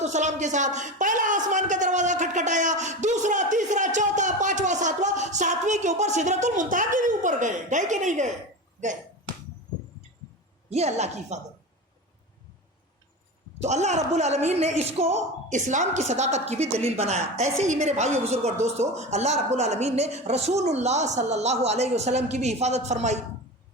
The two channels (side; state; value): both; normal; correlation 0.26